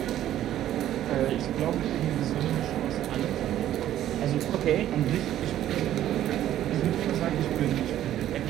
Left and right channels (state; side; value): quieter; left; 12.3 dB